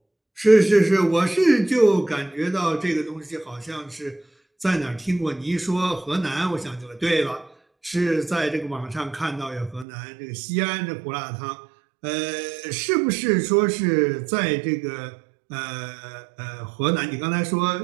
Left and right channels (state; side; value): drops out; left; at 9.9 s